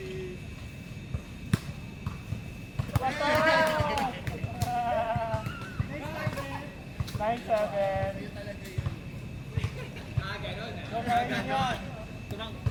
Nine, 7. Ganon ah. So, kaya yun.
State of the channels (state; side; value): identical; both; correlation 1.00